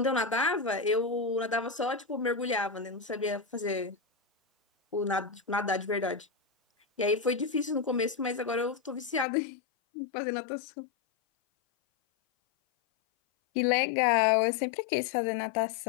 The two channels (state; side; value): drops out; right; at 9.2 s